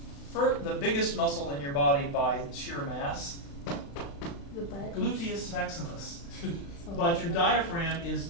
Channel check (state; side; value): late; right; 35 ms